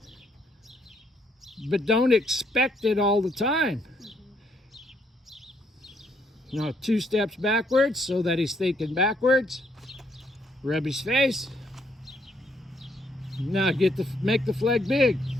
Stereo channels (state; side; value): normal; both; correlation 0.71